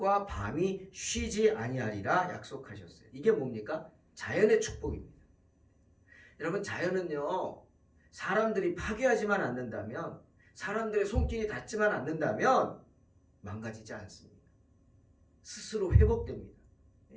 밤이 쉬지 아니하리라 약속하셨어요. 이게 뭡니까? 자연의 축복입니다. 여러분, 자연은요 사람들이 파괴하지만 않는다면, 사람들의 손길이 닿지만 않는다면 망가지지 않습니다. 스스로 회복됩니다.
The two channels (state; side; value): identical; both; correlation 1.00